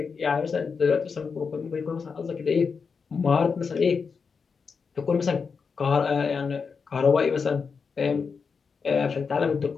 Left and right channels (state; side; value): quieter; right; 5.5 dB